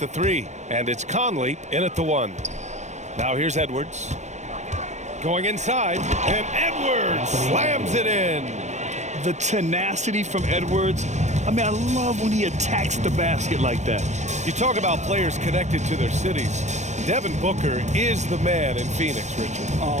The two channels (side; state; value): left; late; 0.34 ms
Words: 3. And it's Conley in at the 1. Now here's Edwards. Going inside, and Edwards slams it in. The tenacity from Edwards. I mean, I love when he attacks the basket like that. You talk about players connected to their cities. Devin Booker is the man in Phoenix, Richard.